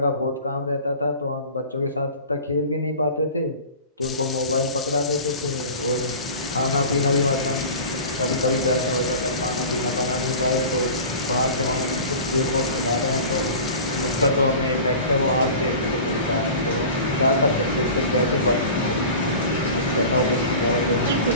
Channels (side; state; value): both; inverted; correlation -0.38